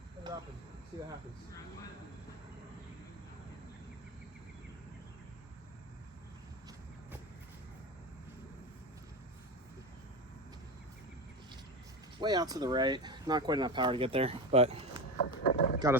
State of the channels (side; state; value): both; normal; correlation 0.21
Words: Put it up and see what happens. Way out to the right, not quite enough power to get there, but got